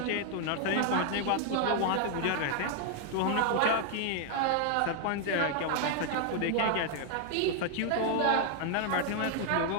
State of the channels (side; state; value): both; different; correlation 0.00